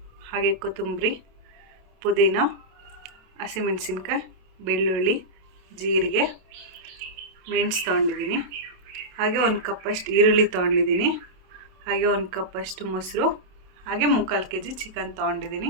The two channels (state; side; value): late; left; 27 ms